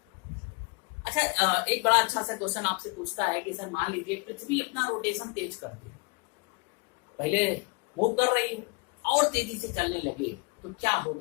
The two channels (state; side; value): quieter; right; 30.2 dB